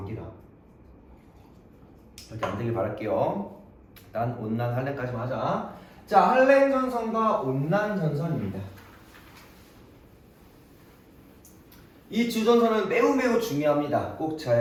이렇게 안 되길 바랄게요. 일단 온난 한랭까지만 하자. 자, 한랭 전선과 온난 전선입니다. 이 두 전선은 매우 중요합니다. 꼭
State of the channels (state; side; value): identical; both; correlation 1.00